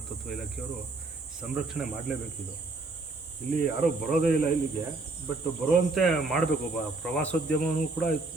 ಇಲಾಖೆಯವರು ಸಂರಕ್ಷಣೆ ಮಾಡಲೇಬೇಕಿದು. ಇಲ್ಲಿ ಯಾರೂ ಬರೋದೇ ಇಲ್ಲ ಇಲ್ಲಿಗೆ, ಬಟ್ ಬರುವಂತೆ ಮಾಡಬೇಕು. ಪ್ರವಾಸೋದ್ಯಮವೂ ಕೂಡ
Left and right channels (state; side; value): quieter; left; 3.4 dB